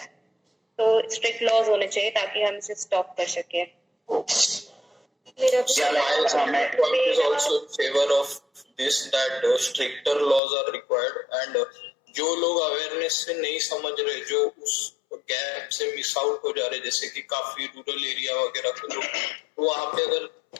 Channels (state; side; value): drops out; right; at 10.4 s